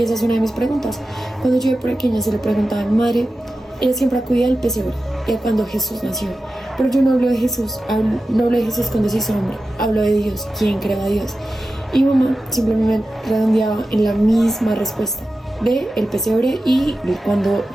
esa es una de mis preguntas. Cuando yo era pequeña se le preguntaba a mi madre, ella siempre acudía al pesebre, cuando Jesús nació. Pero yo no hablo de Jesús, no hablo de Jesús cuando se hizo hombre, hablo de Dios, ¿quién creó a Dios? Y mamá simplemente redondeaba en la misma respuesta de el pesebre y de cuando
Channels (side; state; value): both; normal; correlation 0.93